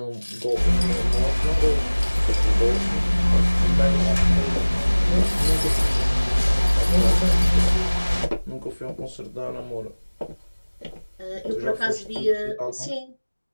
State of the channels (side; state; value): both; inverted; correlation -1.00